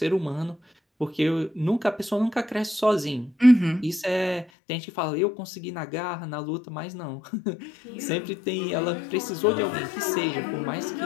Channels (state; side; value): drops out; right; at 4.5 s